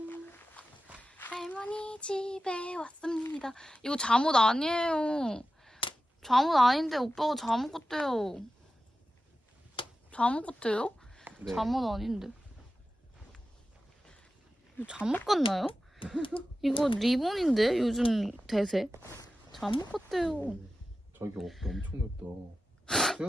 할머니 집에 왔습니다. 이거 잠옷 아니에요. 잠옷 아닌데 오빠가 잠옷 같대요. 잠옷 같아요? 네. 잠옷 아닌데. 이거 잠옷 같나요? 이거 리본인데 요즘 대세. 잠옷 같대요. 저기 어깨 엄청 넓다.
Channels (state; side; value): normal; both; correlation 0.93